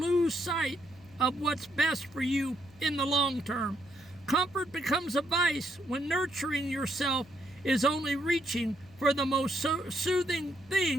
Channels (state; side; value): noise; left; hum, 25 dB below the sound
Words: sight of what's best for you in the long term. Comfort becomes a vice when nurturing yourself is only reaching for the most soothing